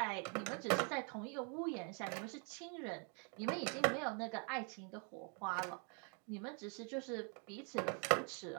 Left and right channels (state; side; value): quieter; left; 38.3 dB